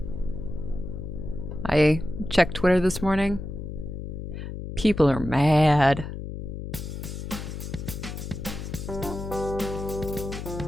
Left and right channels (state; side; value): noise; left; hum, 7 dB below the sound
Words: I checked Twitter this morning. People are mad.